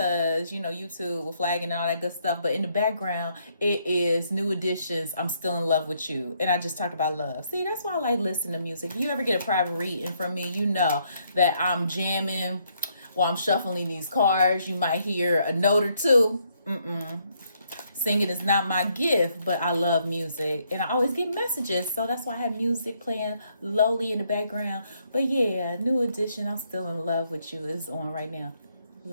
YouTube will flag and all that good stuff. But in the background, it is New Editions, I'm Still in Love with You. And I just talked about love. See, that's why I like listening to music. If you ever get a private reading from me, you know that I'm jamming while I'm shuffling these cards. You might hear a note or two. Singing is not my gift, but I love music. And I always get messages. So that's why I have music playing lowly in the background. But yeah, New Edition, I'm Still in Love with You is on right now.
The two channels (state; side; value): inverted; both; correlation -0.73